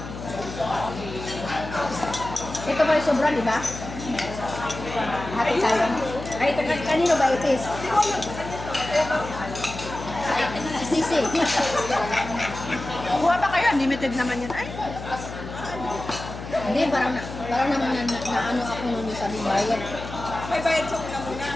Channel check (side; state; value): left; noise; hum, 10 dB below the sound